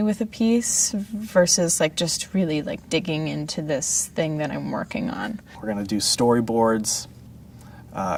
with a piece versus like just really like digging into this thing that I'm working on. We're going to do storyboards,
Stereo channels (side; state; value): both; identical; correlation 1.00